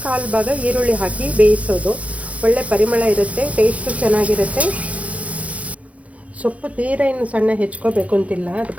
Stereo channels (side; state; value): left; late; 0.066 ms